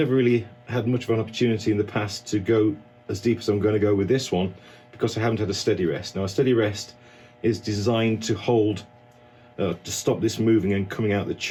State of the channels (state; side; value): identical; both; correlation 1.00